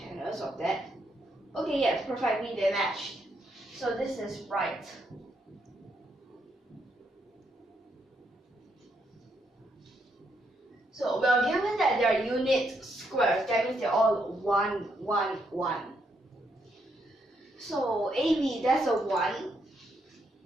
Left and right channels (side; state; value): both; normal; correlation 0.77